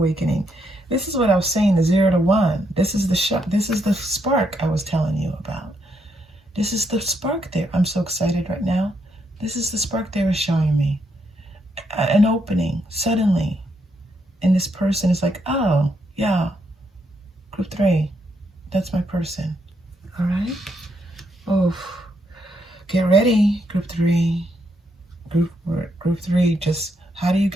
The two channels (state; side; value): normal; both; correlation 0.77